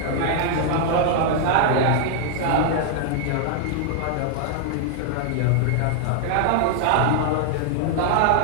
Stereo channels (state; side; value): different; both; correlation 0.00